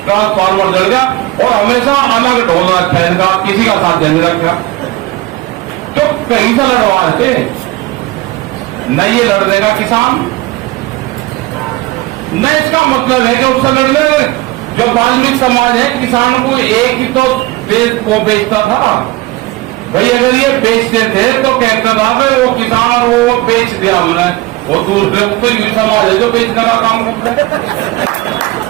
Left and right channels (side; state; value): left; quieter; 19.4 dB